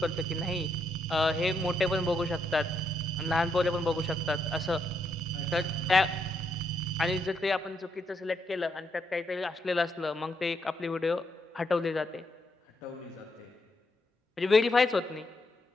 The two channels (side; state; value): both; normal; correlation 0.78